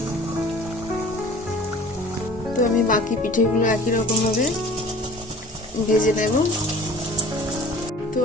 তো আমি বাকি পিঠেগুলো একই রকম ভাবে ভেজে নেব। তো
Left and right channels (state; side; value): normal; both; correlation 0.46